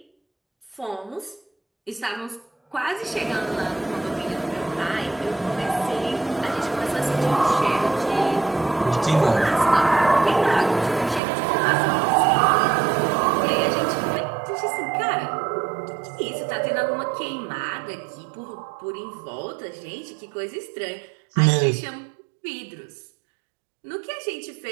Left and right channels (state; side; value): drops out; left; at 11.2 s